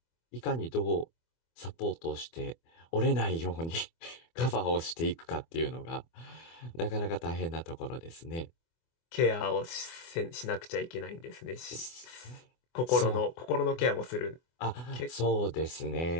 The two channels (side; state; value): right; late; 24 ms